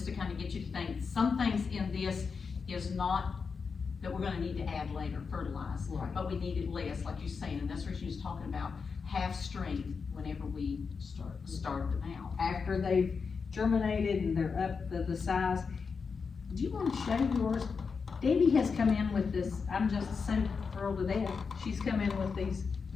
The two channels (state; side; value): quieter; right; 5.4 dB